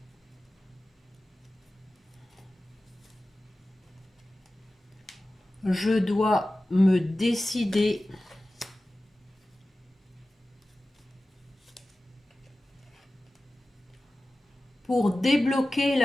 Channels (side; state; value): both; normal; correlation 0.96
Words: Je dois me décider pour débloquer